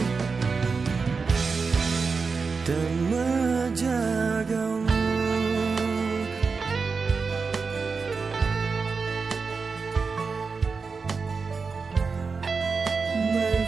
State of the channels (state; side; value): quieter; left; 4.8 dB